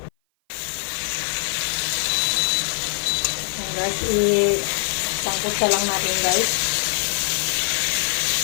Ayan guys, isangkot sa lang natin guys.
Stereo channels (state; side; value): silent; right; 56 dB below the other